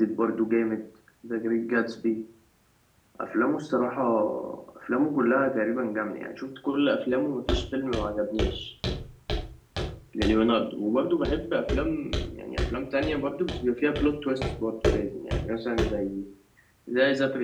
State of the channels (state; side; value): identical; both; correlation 1.00